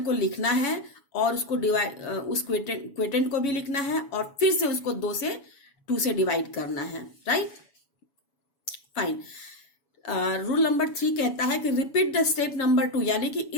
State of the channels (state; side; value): late; right; 7.1 ms